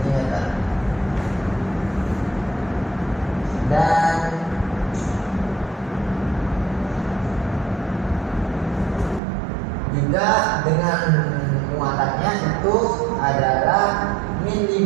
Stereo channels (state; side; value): drops out; left; at 9.2 s